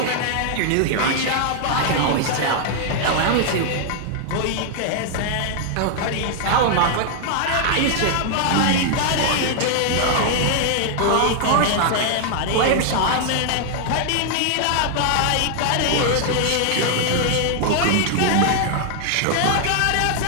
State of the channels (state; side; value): different; both; correlation 0.00